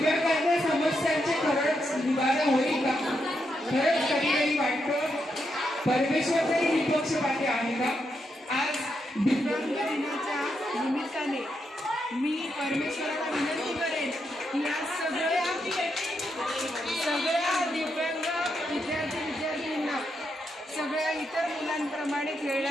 समस्यांचे खरंच निवारण होईल का? खरंच कधी कधी वाटतं परमेश्वर तरी निपक्षपाती आहे का? आज दिव्यांग दिनाच्या निमित्ताने मी परमेश्वराला विनंती करेन की या सगळ्या दिव्यांग विद्यार्थींना सगळ्या इतर मुलांप्रमाणे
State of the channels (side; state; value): both; normal; correlation 0.82